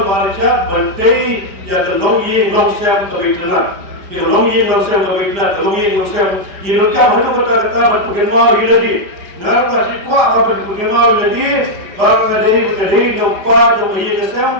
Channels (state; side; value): late; left; 5.3 ms